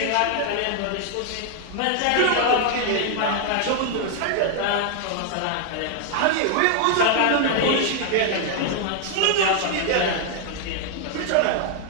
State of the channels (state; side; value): different; both; correlation 0.00